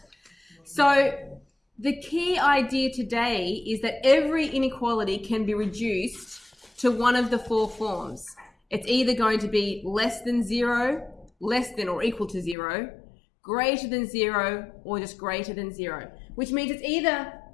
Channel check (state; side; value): drops out; right; at 12.6 s